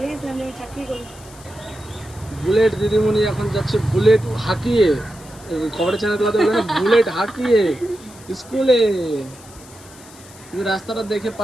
গেছিলাম যে আমি চাকরি করি। বুলেট দিদিমণি এখন যাচ্ছে বুলেট হাঁকিয়ে, খবরের চ্যানেলগুলোতে বলে না, বুলেট হাঁকিয়ে স্কুলে। তুমি রাস্তাটা দেখে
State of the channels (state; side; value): noise; left; hiss, 21 dB below the sound